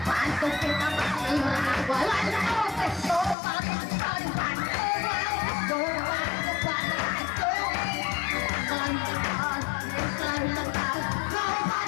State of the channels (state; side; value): drops out; right; at 3.4 s